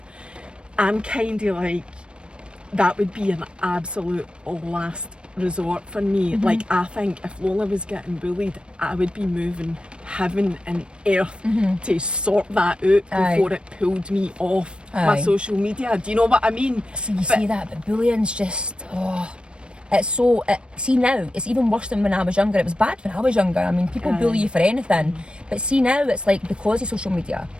I'm kind of like, that would be an absolute last resort for me. Like, I think if Lola was getting bullied, I would be moving heaven and earth to sort that out before it pulled me off my social media. Do you know what I mean? So you see that, but bullying's just, it's so, see now, it's even worse than when I was younger. It was bad when I was younger. I mean, people bully you for anything. But see now, it's like, because of social media,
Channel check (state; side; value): late; left; 0.056 ms